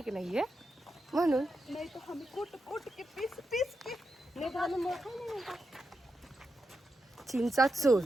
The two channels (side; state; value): both; normal; correlation 0.87